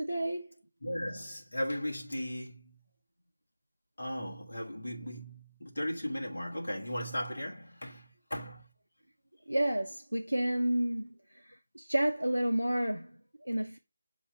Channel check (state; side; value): inverted; both; correlation -0.98